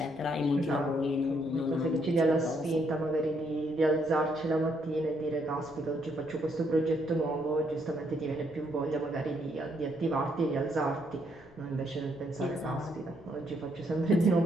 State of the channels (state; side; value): noise; left; rumble, 26 dB below the sound